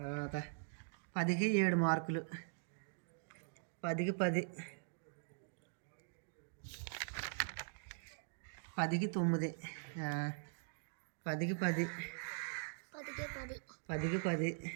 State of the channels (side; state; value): left; silent; digital silence